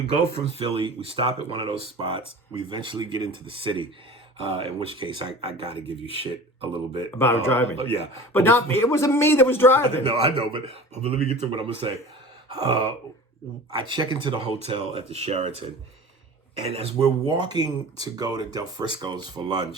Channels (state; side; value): normal; both; correlation 0.38